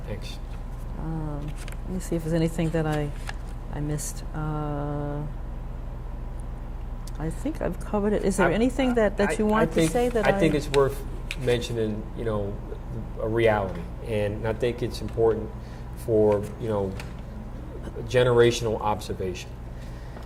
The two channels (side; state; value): both; identical; correlation 1.00